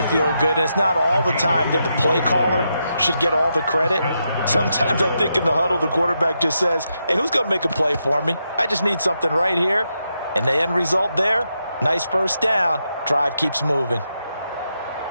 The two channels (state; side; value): inverted; both; correlation -0.83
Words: feel good. And it's not all the time that the play caller should get all the credit. Sometimes I think in the huddle, the quarterback just says, hey, who's going to make a play for me? I just need something right here. And the end result there, nice first down. Drive keeps moving.